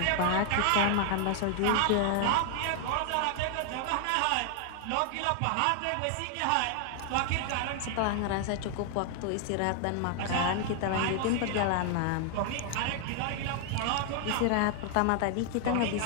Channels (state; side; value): different; both; correlation 0.00